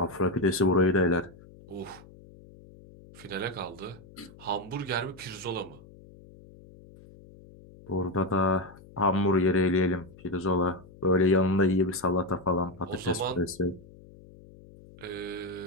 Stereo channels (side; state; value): left; noise; hum, 22 dB below the sound